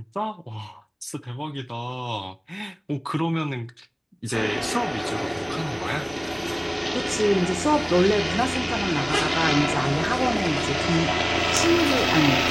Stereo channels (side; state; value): both; identical; correlation 1.00